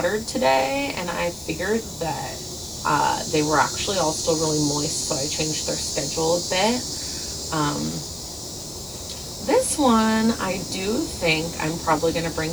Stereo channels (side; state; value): left; noise; hiss, 16 dB below the sound